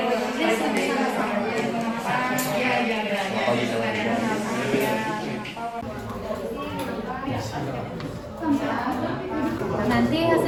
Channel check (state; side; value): identical; both; correlation 1.00